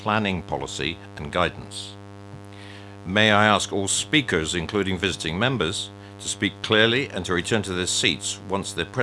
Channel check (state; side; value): identical; both; correlation 1.00